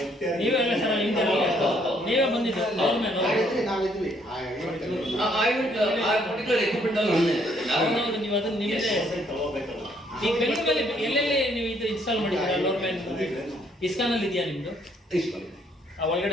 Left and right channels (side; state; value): both; normal; correlation 0.67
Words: ನೀವೆಲ್ಲ ಸರ್ ನೀವೇ ಬಂದಿದ್ದು ಅವ್ರ ಮೇಲೆ ನಾವಿದ್ವಿ. ಆ ಪರ್ಟಿಕ್ಯುಲರ್ ಎಕ್ವಿಪ್ಮೆಂಟ್ ಅಲ್ಲಿ ಹೌದು ನೀವು ಅದನ್ನ ನಿಮ್ಮದೇ ಈ ಬೆಂಗಳೂರಲ್ಲಿ ಎಲ್ಲೆಲ್ಲಿ ನೀವು ಇದು ಇನ್ಸ್ಟಾಲ್ ಮಾಡಿದ್ದೀರಾ ಲೋರ್ಮ್ಯಾನ್ ಇಸ್ಕಾನ್ ಅಲ್ಲಿ ಇದೆಯಾ ನಿಮ್ದು?